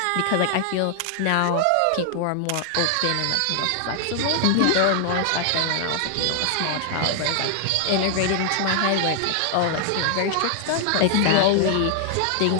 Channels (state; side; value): different; both; correlation 0.00